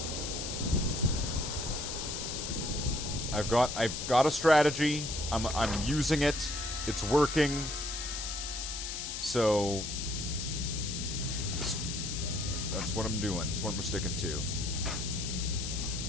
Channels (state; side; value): noise; left; hiss, 5 dB below the sound